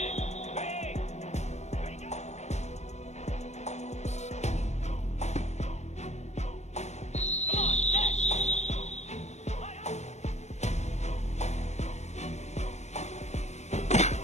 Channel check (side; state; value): right; late; 0.33 ms